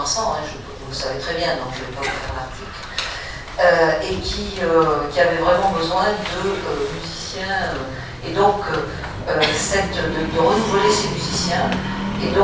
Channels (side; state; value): both; identical; correlation 1.00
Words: vous le savez très bien, donc je ne vais pas vous faire l'article. Et qui avait vraiment besoin de musiciens, et donc de renouveler ces musiciens. Et